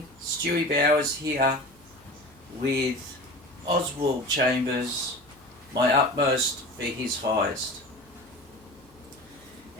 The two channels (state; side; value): noise; left; hum, 30 dB below the sound